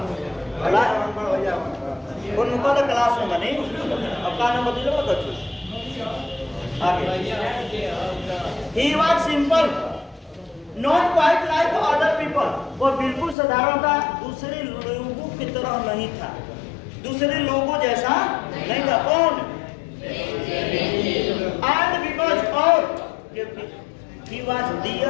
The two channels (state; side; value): drops out; right; at 13.4 s